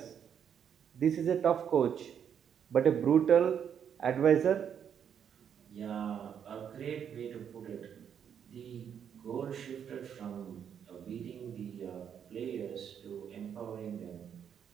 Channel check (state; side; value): quieter; left; 8.3 dB